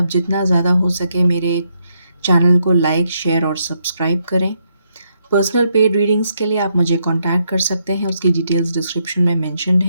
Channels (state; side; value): inverted; both; correlation -0.78